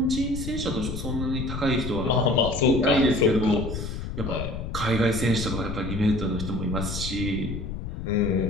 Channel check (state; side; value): noise; left; rumble, 6 dB below the sound